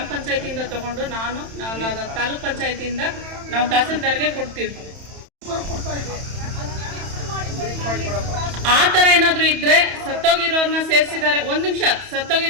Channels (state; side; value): late; left; 31 ms